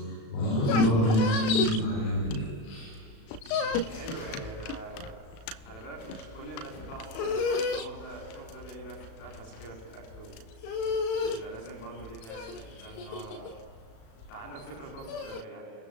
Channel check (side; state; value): right; late; 36 ms